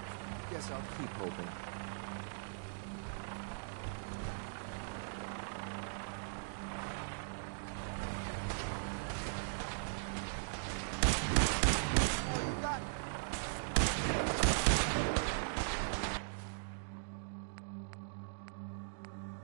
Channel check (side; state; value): left; silent; digital silence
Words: Guess I'll keep hoping. Is that all you got?